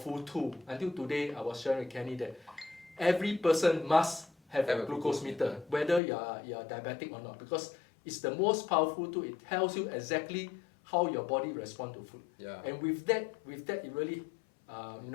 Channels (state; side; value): drops out; right; at 6.0 s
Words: tool. Until today, I was sharing with Kenny that every person must have a glucose meter, whether you are diabetic or not, because it's the most powerful tool. It tells you exactly how your body responds to food. And with that, it really,